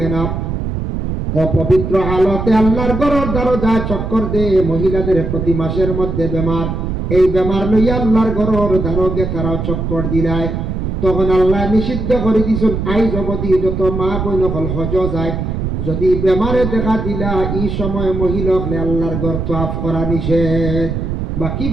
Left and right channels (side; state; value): right; noise; rumble, 3 dB below the sound